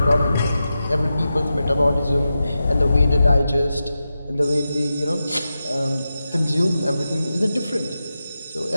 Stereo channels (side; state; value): both; inverted; correlation -0.91